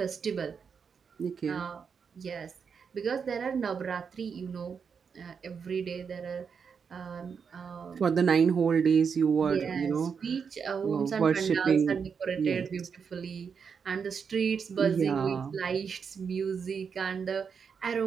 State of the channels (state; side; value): quieter; left; 6.3 dB